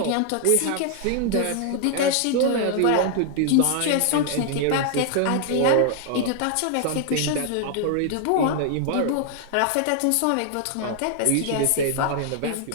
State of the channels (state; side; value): different; both; correlation 0.00